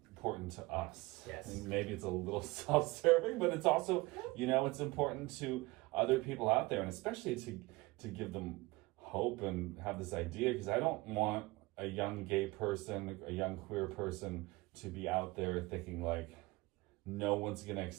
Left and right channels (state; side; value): quieter; left; 22.4 dB